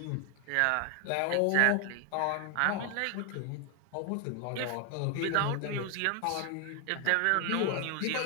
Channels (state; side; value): different; both; correlation 0.00